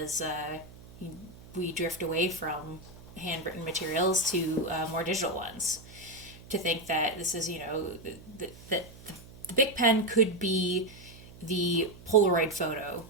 we drift away from handwritten materials to more digital ones. To think that this is that the Bic pen could be the Polaroid photo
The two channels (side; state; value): right; noise; hum, 19 dB below the sound